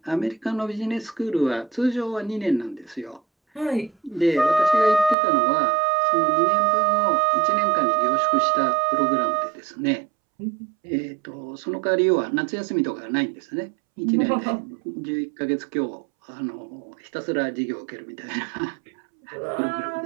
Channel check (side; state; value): left; drops out; at 5.2 s